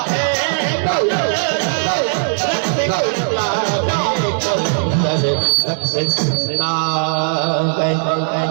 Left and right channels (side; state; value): left; silent; digital silence